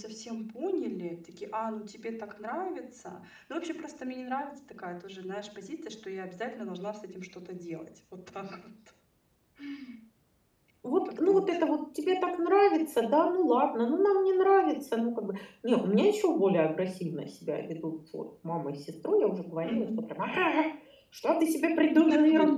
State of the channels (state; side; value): identical; both; correlation 1.00